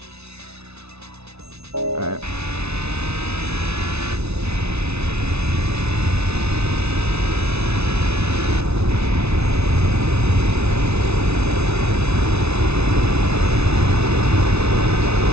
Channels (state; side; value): late; left; 0.80 ms